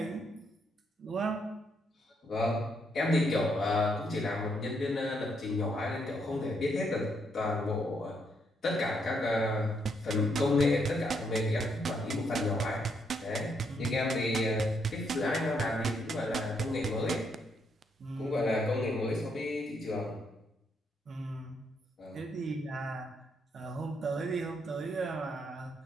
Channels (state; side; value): normal; both; correlation 0.75